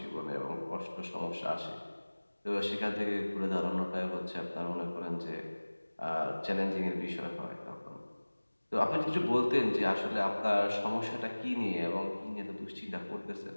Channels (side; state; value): both; inverted; correlation -1.00